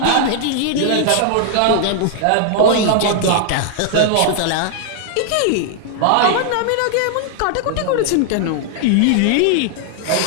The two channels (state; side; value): different; both; correlation 0.00